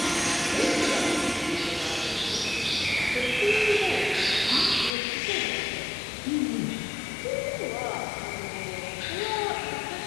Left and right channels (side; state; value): right; drops out; at 4.9 s